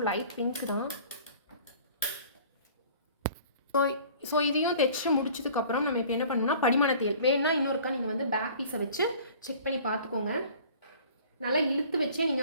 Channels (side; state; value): both; inverted; correlation -0.48